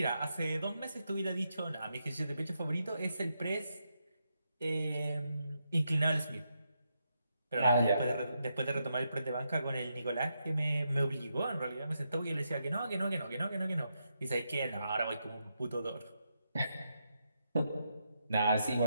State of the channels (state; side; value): inverted; both; correlation -0.83